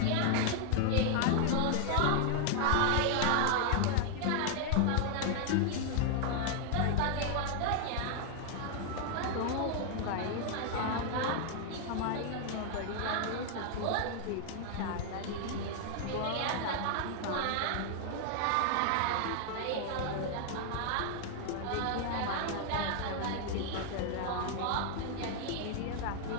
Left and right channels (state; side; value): different; both; correlation 0.00